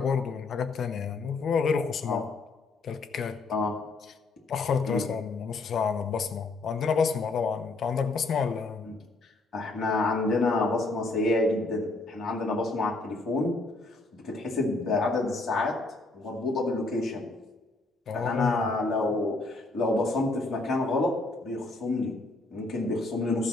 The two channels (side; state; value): right; quieter; 3.3 dB